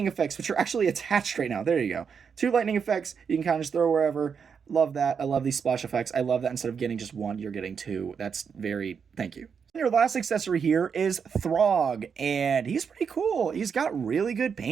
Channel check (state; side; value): quieter; left; 6.5 dB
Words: effects, which are actually attached right now. There you go. 2 lightning effects. You can kind of just throw wherever. Love that. I love these splash effects. I love that instead of getting just 1, you're getting 2. That's very, thank you. Your last accessory here is Throg, and he's pretty cool. He's got really good